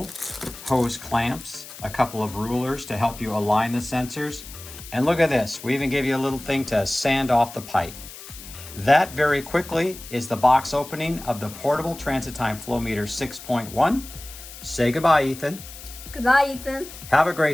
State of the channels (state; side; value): noise; left; hiss, 15 dB below the sound